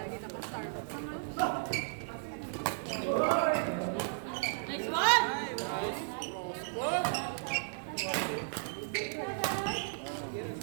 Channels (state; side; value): silent; left; 55 dB below the other